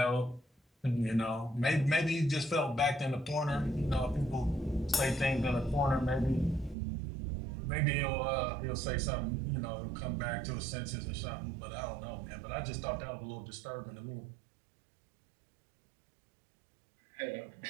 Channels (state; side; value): drops out; left; at 6.8 s